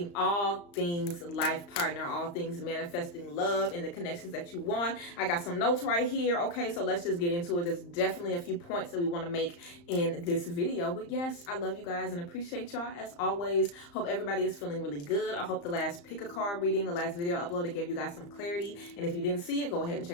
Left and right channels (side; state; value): right; late; 35 ms